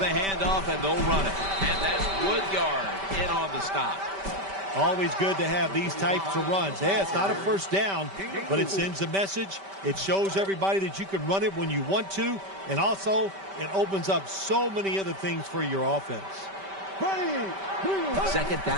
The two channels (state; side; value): late; left; 5.1 ms